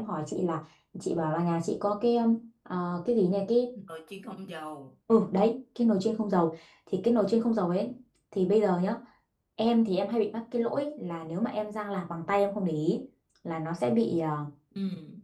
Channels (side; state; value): both; identical; correlation 1.00